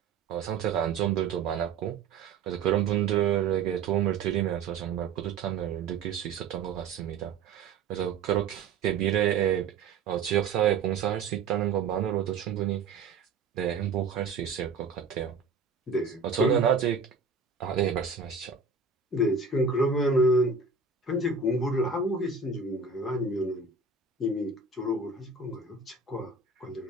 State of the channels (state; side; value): quieter; left; 5.1 dB